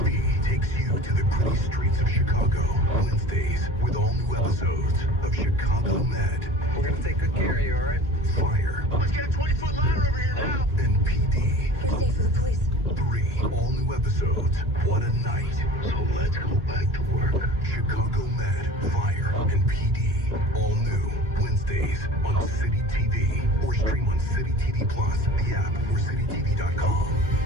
takes you to the gritty streets of Chicago. Wednesdays with all new episodes of Chicago Med. We're gonna take good care of you, all right? Fire. Let's get a 20-foot ladder over here now. And PD. Stay for the police. 3 all new episodes. What a night. So let's go back to work. Chicago Med, Fire, and PD. All new Wednesdays on City TV. Or stream on City TV Plus, the app, or citytv.com.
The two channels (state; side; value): normal; both; correlation 0.40